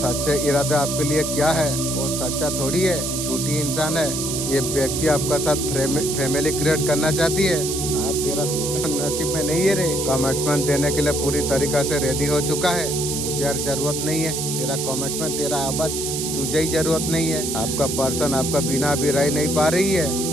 इरादा आपके लिए क्या है, वो सच्चा थोड़ी है, झूठी इंसान है। ये व्यक्ति आपका साथ फैमिली क्रिएट करना चाहती है और तेरा नसीब में नहीं है रे। कमिटमेंट देने के लिए पूरी तरीका से रेडी हो चुका है, मुझे और जरूरत नहीं है तेरा कमिटमेंट, तेरा आवाज तुझे ही जरूरत नहीं है। आपका पर्सन आपका बिना भी रह नहीं पा रही है,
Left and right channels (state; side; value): noise; right; hiss, 3 dB below the sound